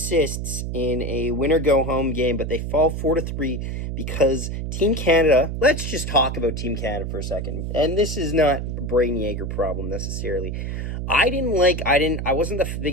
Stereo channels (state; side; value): noise; right; hum, 4 dB below the sound